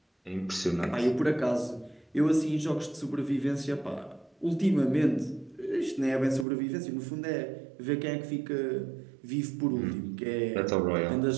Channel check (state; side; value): drops out; left; at 6.5 s